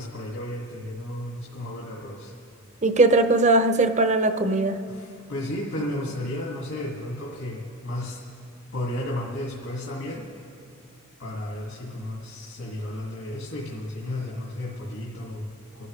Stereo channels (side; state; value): both; normal; correlation 0.22